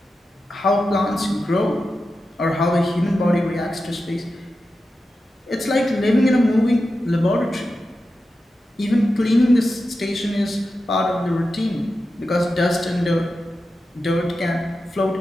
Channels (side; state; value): both; normal; correlation 0.91